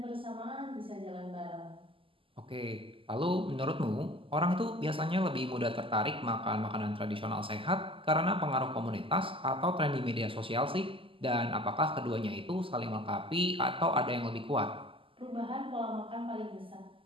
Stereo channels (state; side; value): late; left; 0.25 ms